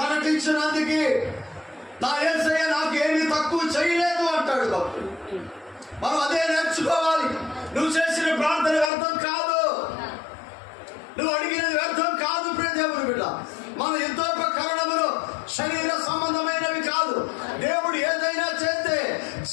నా యేసయ్య నాకు ఏమీ తక్కువ చేయలేదు అంటాడు భక్తుడు. మనం అదే నేర్చుకోవాలి. నువ్వు చేసిన ప్రార్థన వ్యర్థం కాదు, నువ్వు అడిగినది వ్యర్థం కాదు. ప్రియ దేవుని బిడ్డ, మన యుద్ధోపకరణములు శరీర సంబంధమైనవి కాదు. దేవుడు ఏదైనా చేస్తే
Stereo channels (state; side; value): drops out; right; at 8.9 s